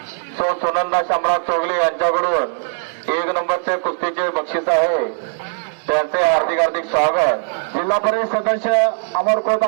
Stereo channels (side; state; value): left; silent; 64 dB below the other